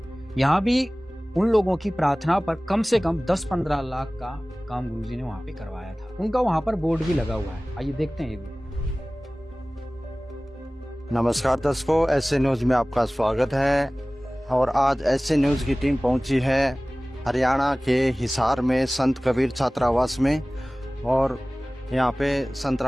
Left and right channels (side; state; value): both; normal; correlation 0.98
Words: यहाँ भी उन लोगों की प्रार्थना पर कम से कम 10-15 लाख का काम गुरुजी ने वहाँ पे करवाया था। उनका वहाँ पर बोर्ड भी लगा हुआ है, आइए देखते हैं ये भी। नमस्कार दर्शकों, ऐसे न्यूज में आपका स्वागत है। और आज ऐसे न्यूज की टीम पहुंची है हरियाणा के हिसार में संत कबीर छात्रावास में। और यहाँ पे संत